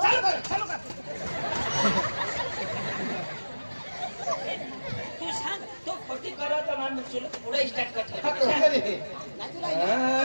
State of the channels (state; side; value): inverted; both; correlation -1.00